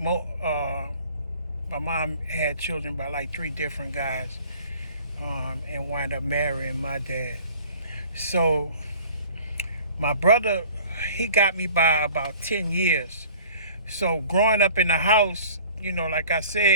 mom had children by like 3 different guys, and wound up marrying my dad. So my brother, he got me by about 10 years. So growing up in the house, you know, like I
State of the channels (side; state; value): both; inverted; correlation -0.48